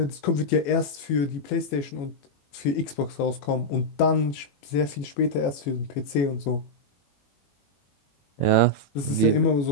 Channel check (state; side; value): late; right; 21 ms